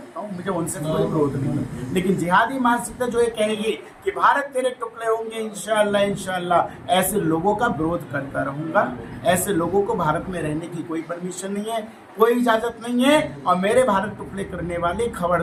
हूँ, मुझे उनसे कोई विरोध नहीं। लेकिन जिहादी मानसिकता जो ये कहेगी कि भारत तेरे टुकड़े होंगे इंशाअल्लाह, ऐसे लोगों का विरोध करता रहूँगा। ऐसे लोगों को भारत में रहने की कोई परमिशन नहीं है, कोई इजाज़त नहीं है। और मेरे भारत टुकड़े करने वाले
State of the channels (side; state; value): both; identical; correlation 1.00